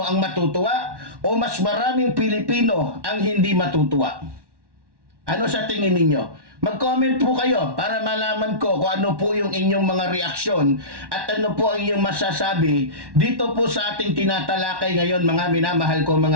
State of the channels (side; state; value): left; late; 1.1 ms